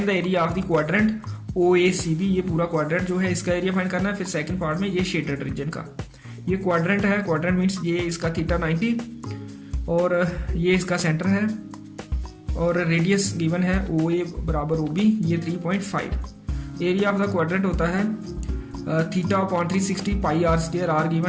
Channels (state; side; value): identical; both; correlation 1.00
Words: the area of the quadrant OACB। ये पूरा quadrant जो है इसका area find करना है। फिर सेकंड पार्ट में ये शेडेड रीजन का, ये क्वाड्रेंट है। क्वाड्रेंट मीन्स ये इसका थीटा 90 और ये इसका सेंटर है और रेडियस गिवन है OA बराबर OB, ये 3.5। एरिया ऑफ द क्वाड्रेंट होता है theta upon 360 pi R square, R